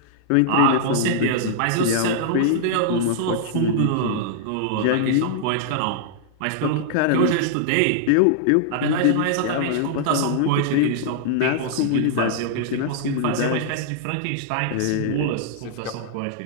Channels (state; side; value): different; both; correlation -0.01